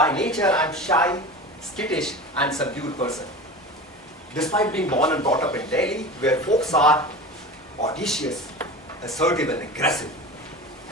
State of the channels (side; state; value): both; normal; correlation 0.32